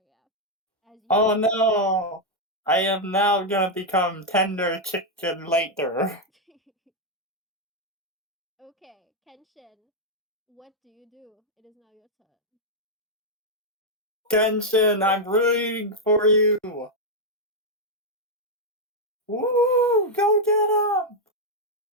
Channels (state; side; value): normal; both; correlation -0.01